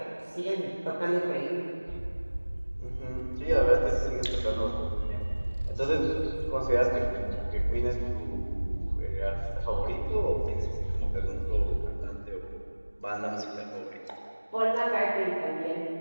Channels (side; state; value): both; inverted; correlation -1.00